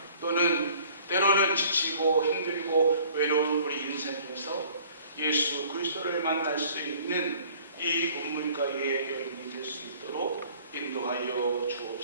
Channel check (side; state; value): both; inverted; correlation -0.53